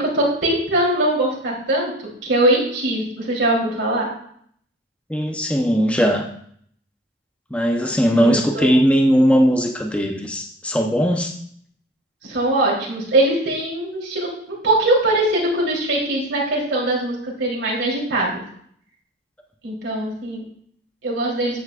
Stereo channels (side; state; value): both; normal; correlation 0.42